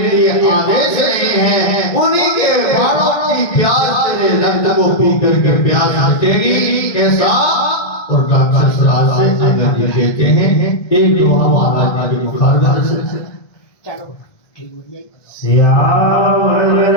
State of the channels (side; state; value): right; late; 1.6 ms